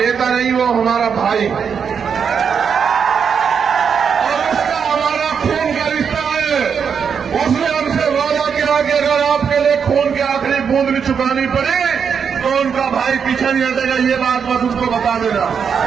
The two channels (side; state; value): left; quieter; 6.8 dB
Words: नहीं, वो हमारा भाई, और उसका हमारा खून का रिश्ता है। उसने हमसे वादा किया कि अगर आपके लिए खून की आखिरी बूंद भी चुकानी पड़े तो उनका भाई पीछे नहीं हटेगा। ये बात बस उसको बता देना।